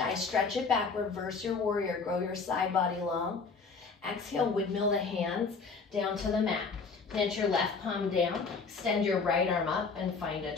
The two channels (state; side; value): quieter; right; 4.7 dB